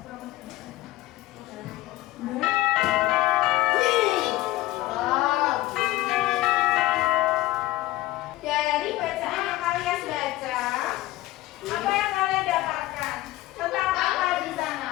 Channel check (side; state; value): right; quieter; 17.0 dB